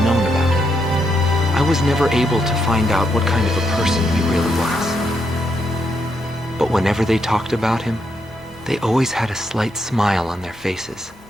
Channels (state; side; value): normal; both; correlation 0.79